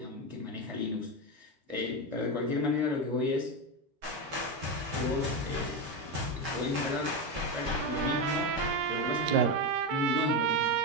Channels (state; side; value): late; left; 13 ms